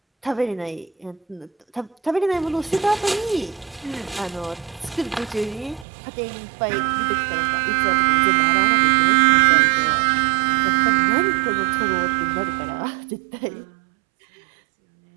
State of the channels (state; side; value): drops out; left; at 5.9 s